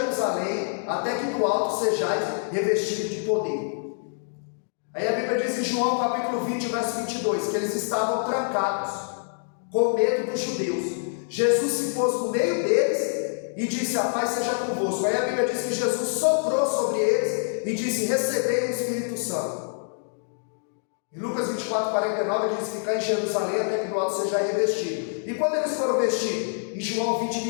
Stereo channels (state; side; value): silent; right; digital silence